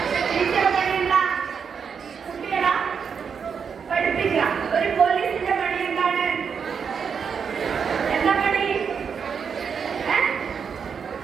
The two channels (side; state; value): left; quieter; 6.5 dB